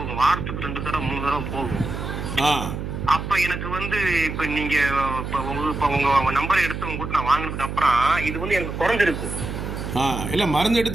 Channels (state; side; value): noise; right; hum, 6 dB below the sound